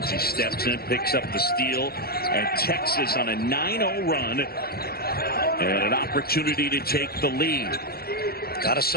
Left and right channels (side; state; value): right; late; 0.45 ms